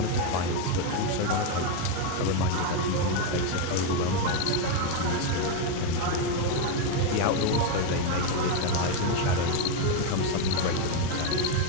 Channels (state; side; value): different; both; correlation 0.02